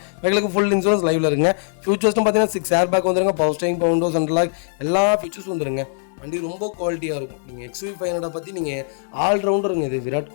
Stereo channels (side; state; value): right; silent; digital silence